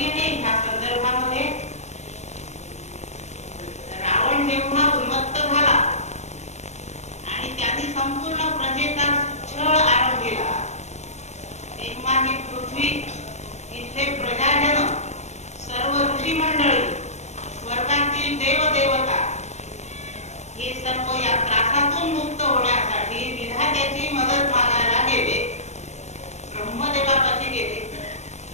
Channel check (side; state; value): right; late; 0.33 ms